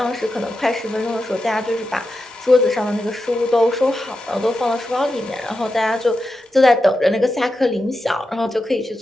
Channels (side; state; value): both; normal; correlation 0.89